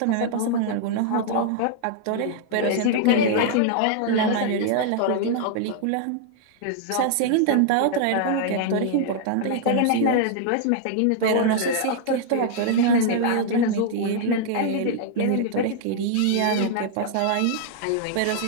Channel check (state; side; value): different; both; correlation 0.00